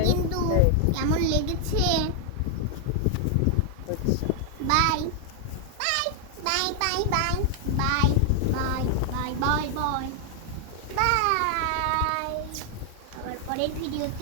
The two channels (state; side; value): different; both; correlation 0.00